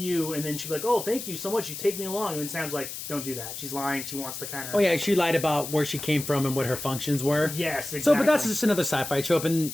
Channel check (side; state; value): left; noise; hiss, 8 dB below the sound